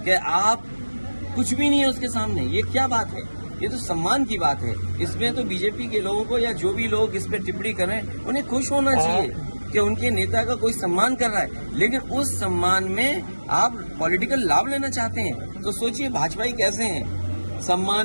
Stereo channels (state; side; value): inverted; both; correlation -1.00